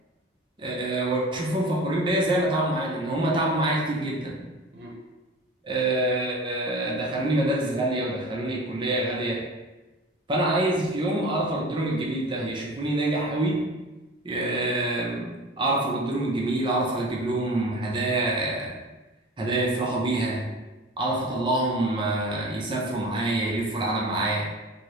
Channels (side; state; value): both; normal; correlation 0.36